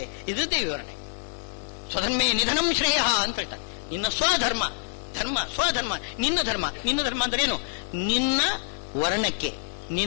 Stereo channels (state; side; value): silent; right; digital silence